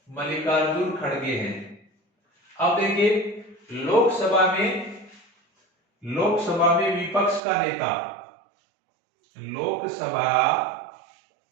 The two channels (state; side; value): drops out; left; at 7.4 s